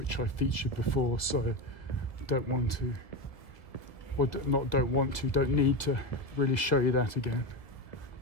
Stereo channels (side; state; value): right; late; 1.5 ms